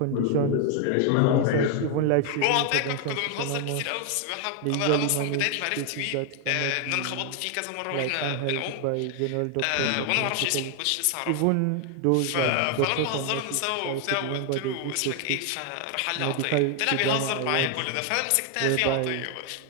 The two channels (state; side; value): different; both; correlation 0.00